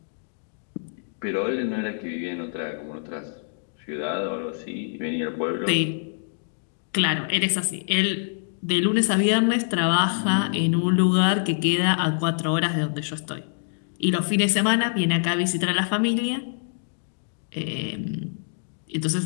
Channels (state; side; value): silent; right; digital silence